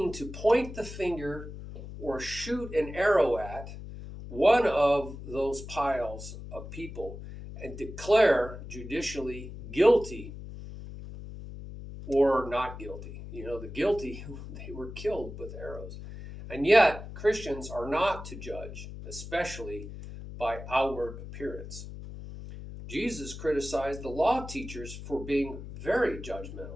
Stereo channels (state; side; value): noise; left; hum, 11 dB below the sound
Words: to point the finger or shoot an arrow at one of those piles of people and declare judicially guilty or not guilty. The guilty, they were killed with arrows. And yet, Christians are not to judge, especially by outward appearance. Jesus criticized the law teachers for being very